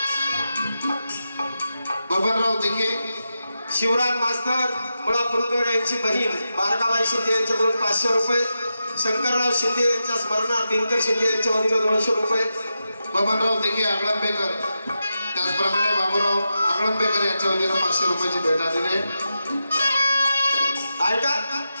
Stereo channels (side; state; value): both; inverted; correlation -0.89